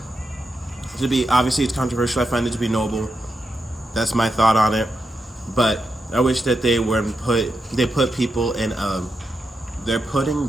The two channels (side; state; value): both; normal; correlation 0.86